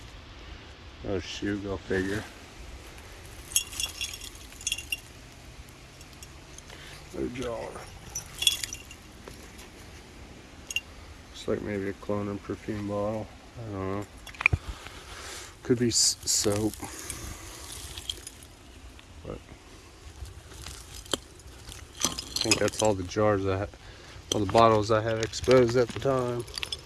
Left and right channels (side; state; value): both; identical; correlation 1.00